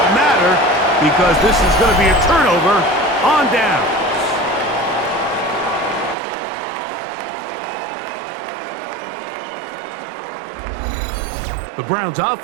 matter because this is going to be a turnover on down. The Browns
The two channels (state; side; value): drops out; left; at 6.2 s